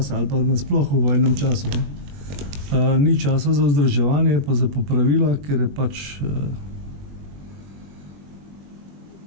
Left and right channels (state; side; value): late; left; 21 ms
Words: ali pa nasploh v vojnem času. Ni časa za vzdrževanje, pa za popravila, ker je pač